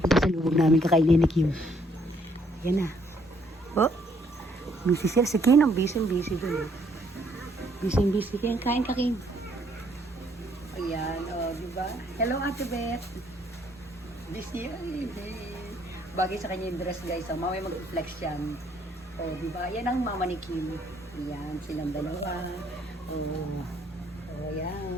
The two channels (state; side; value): normal; both; correlation 0.67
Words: Ito sa lubog namin kakainin ni Kim. Ayan na. O. Busy siya. Si Kim ang busy-busy doon. Busy-busy. Kain ka, Kim. Ayan, o, diba? Hello, Ate Beth. Busy, ay, bagay sa kanya yung dress, guys. So, mamaya mag-flex yan. O, diba? Yan ang mama ni Kim. Ayan, silang dalawa. O,